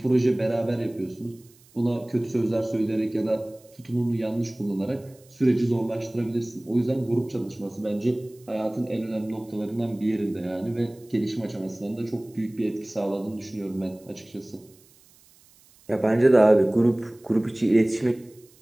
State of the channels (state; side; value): noise; right; hiss, 28 dB below the sound